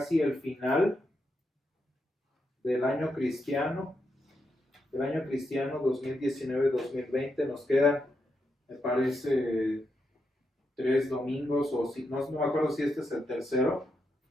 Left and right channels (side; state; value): both; normal; correlation 0.83